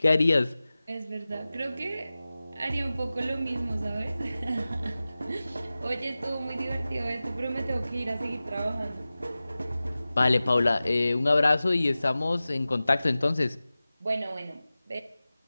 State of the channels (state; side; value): inverted; both; correlation -0.96